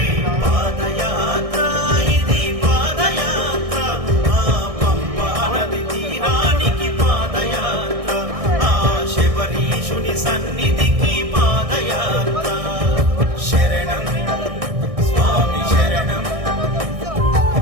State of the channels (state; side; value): late; left; 1.6 ms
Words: పాదయాత్ర ఇది పాదయాత్ర. ఆ పంపా నది తీరానికి పాదయాత్ర. ఆ శబరీషుని సన్నిధికి పాదయాత్ర. శరణం స్వామి